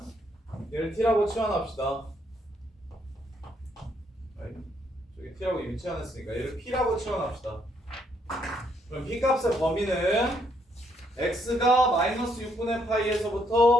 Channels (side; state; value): both; normal; correlation 0.72